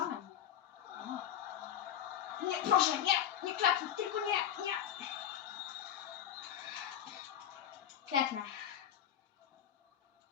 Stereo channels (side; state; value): right; quieter; 10.2 dB